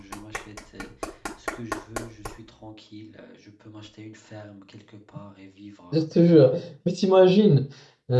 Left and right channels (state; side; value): identical; both; correlation 1.00